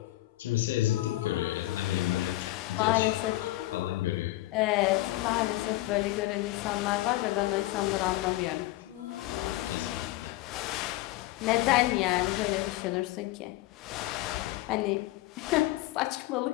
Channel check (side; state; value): right; quieter; 17.7 dB